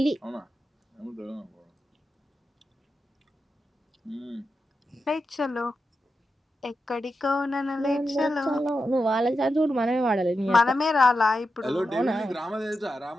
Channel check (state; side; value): normal; both; correlation 0.89